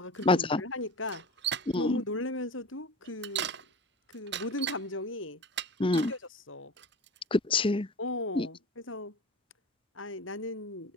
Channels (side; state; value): both; normal; correlation 0.32